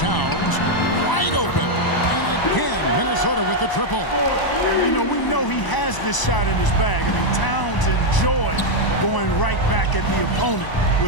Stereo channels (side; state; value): right; late; 1.0 ms